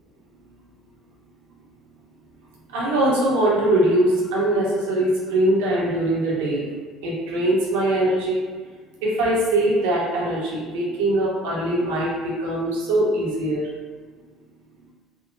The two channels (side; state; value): both; normal; correlation 0.49